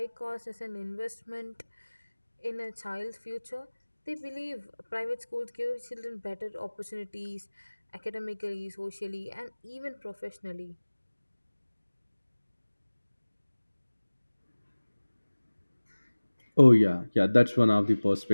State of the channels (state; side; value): inverted; both; correlation -1.00